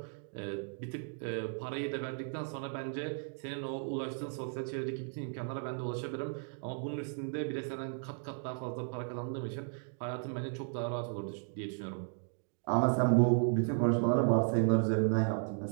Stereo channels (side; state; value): left; silent; 54 dB below the other